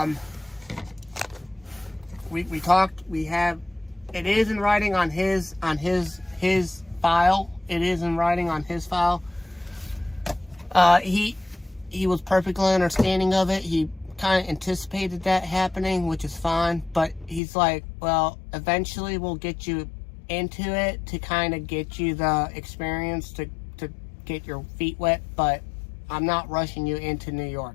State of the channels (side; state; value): right; drops out; at 17.4 s